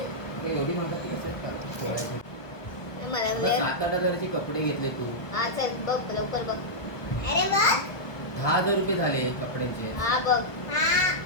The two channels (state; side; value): late; right; 1.1 ms